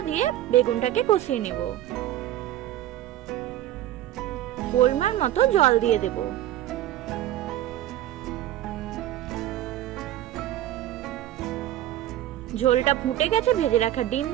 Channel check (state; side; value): quieter; left; 13.3 dB